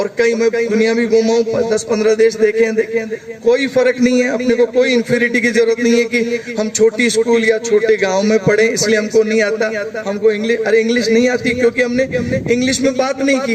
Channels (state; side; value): identical; both; correlation 1.00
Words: कई मैं दुनिया में घूमा हूँ, 10-15 देश देखे हैं, कोई फर्क नहीं है। अपने को कोई इंफीरियरिटी की जरूरत नहीं है कि हम छोटी स्कूल या छोटे गाँव में पढ़े इसलिए हमको नहीं आता, हमको इंग्लिश नहीं आती क्योंकि हमने इंग्लिश में बात नहीं